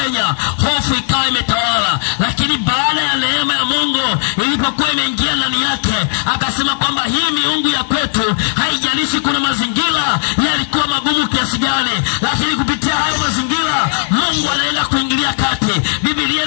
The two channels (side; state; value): right; silent; digital silence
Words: hofu ikawa imetawala. Lakini baada ya neema ya Mungu ilipokuwa imeingia ndani yake, akasema kwamba hii miungu ya kwetu, haijalishi kuna mazingira yalikuwa magumu kiasi gani, lakini kupitia hayo mazingira Mungu anaenda kuingilia kati. Biblia